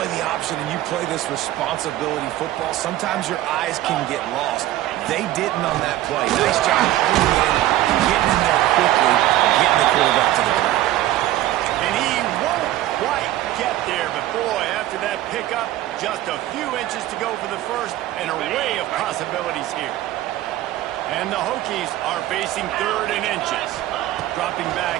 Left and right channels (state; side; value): quieter; left; 14.6 dB